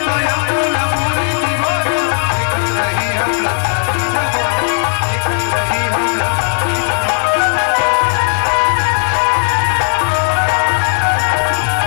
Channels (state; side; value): silent; right; digital silence